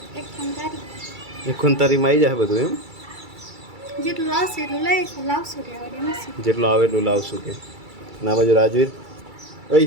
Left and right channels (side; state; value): left; late; 2.3 ms